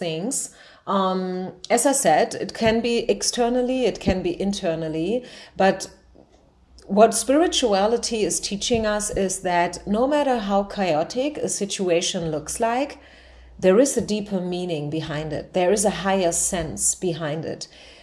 As I said, it can be externally, it can be internally, but what spirituality is teaching us is that no matter how chaotic a situation looks like, there is a deeper meaning behind it. There is a higher sense behind it.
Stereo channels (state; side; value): identical; both; correlation 1.00